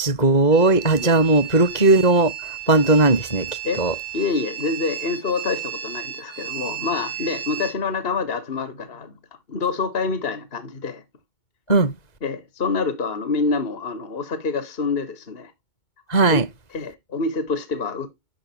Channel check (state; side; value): late; right; 2.0 ms